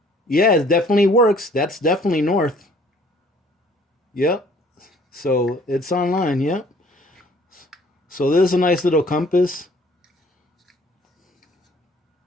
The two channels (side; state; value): both; normal; correlation 0.57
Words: Yeah, it definitely works. That's definitely north. Yep. So it's online, yep. So there's a nice little compass.